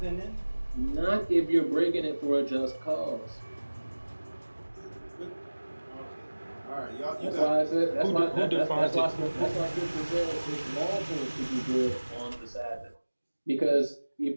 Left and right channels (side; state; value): both; inverted; correlation -1.00